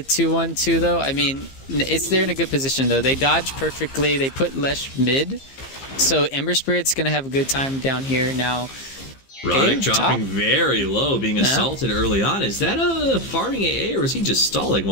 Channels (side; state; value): right; late; 15 ms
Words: 2-1-2 though. I mean, they're in a good position though. They dodge perfectly. They put Lesh mid. So Ember Spirit's going to have a good time down here now. Roddick dropping very low, being assaulted early on. Is that a farming AA, or is he just stalling